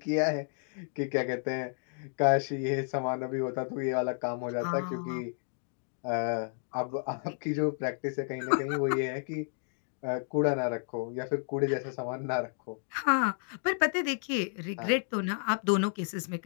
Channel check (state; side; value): silent; right; 57 dB below the other